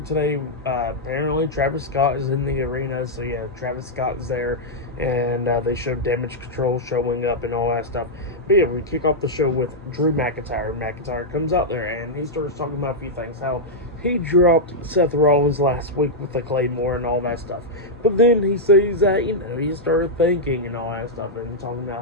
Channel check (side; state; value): both; normal; correlation -0.06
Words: today, apparently Travis Scott is in the arena. So yeah, Travis Scott is there. And they showed Damage Control showing up and all that stuff. But yeah, we kick off the show with Drew McIntyre. McIntyre comes out there and he starts talking about a few things. How he dropped Seth Rollins last week with the Claymore and all that stuff. But then he says that, he started thinking and all that stuff. And talking